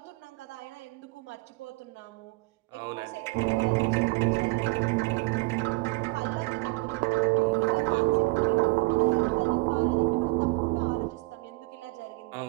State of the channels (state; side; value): quieter; left; 24.9 dB